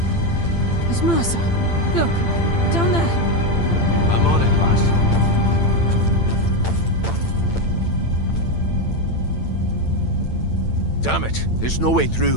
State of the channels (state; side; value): late; right; 8.9 ms